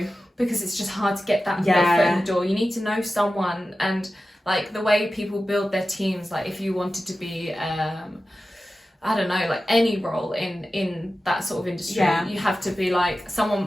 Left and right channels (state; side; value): normal; both; correlation 0.94